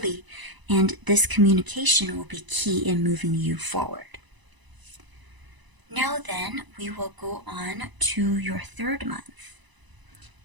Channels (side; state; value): left; late; 1.0 ms